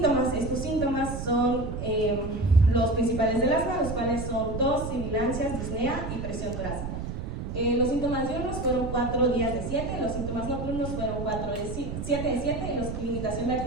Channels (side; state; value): right; noise; rumble, 6 dB below the sound